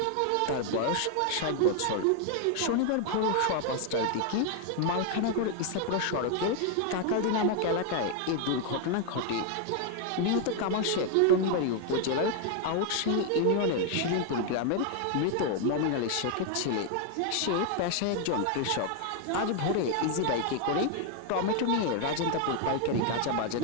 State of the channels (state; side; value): different; both; correlation 0.00